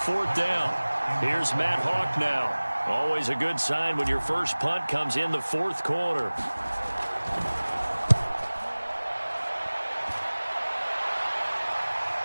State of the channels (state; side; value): inverted; both; correlation -1.00